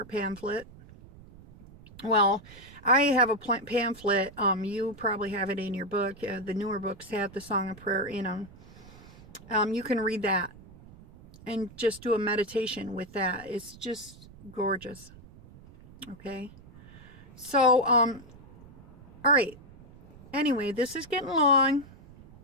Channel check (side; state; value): right; noise; rumble, 21 dB below the sound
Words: pamphlet. Well, I have a pamphlet. You probably have it in your book. The newer books have the Song of Prayer in them. You can read that and just do a meditation with that. It's just gorgeous. Okay. So, all right. Anyway, this is getting long.